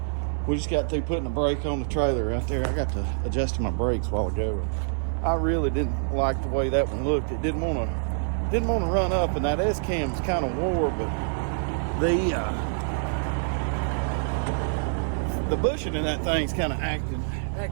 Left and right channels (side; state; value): left; silent; digital silence